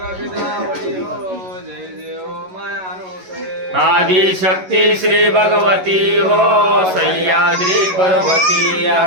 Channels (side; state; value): left; late; 11 ms